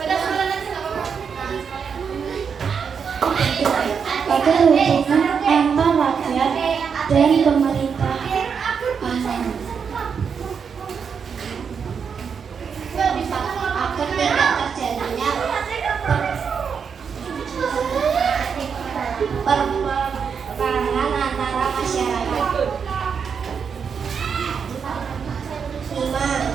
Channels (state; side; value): quieter; left; 6.5 dB